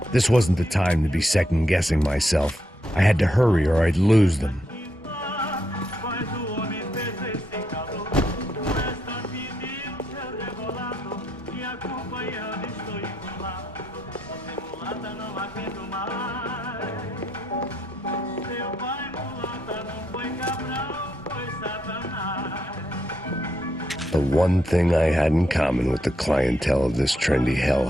This wasn't the time to be second-guessing myself. I had to hurry or I'd lose them. The one thing I had in common with the clientele of this trendy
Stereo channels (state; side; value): normal; both; correlation 0.78